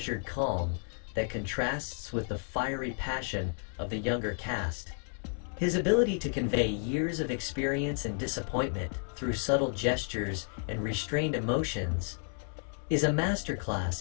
calm that contrasts with the fiery passion of the younger cast. His ability to convey years of experience and disappointment through subtle gestures and restrained emotions is a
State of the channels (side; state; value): right; silent; 56 dB below the other